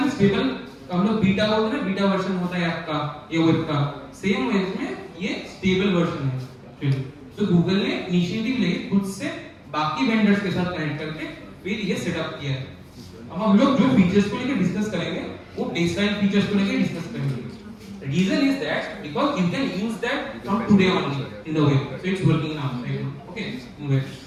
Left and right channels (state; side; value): identical; both; correlation 1.00